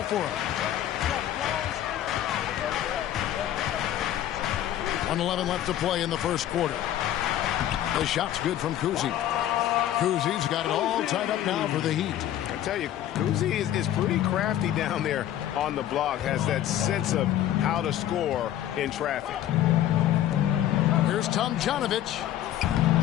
for him. 1:11 left to play in the first quarter. The shot's good from Kuzi. Kuzi's got it all tied up now for the Heat. I tell you, Kuzi is pretty crafty down there on the block, has that sense of how to score in traffic. Here's Tomjanovich.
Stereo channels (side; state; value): right; quieter; 12.0 dB